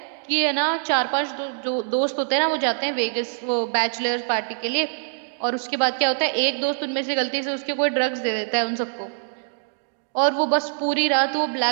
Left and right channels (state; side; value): silent; left; digital silence